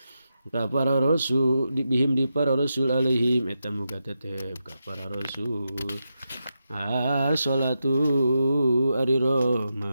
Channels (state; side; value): inverted; both; correlation -0.88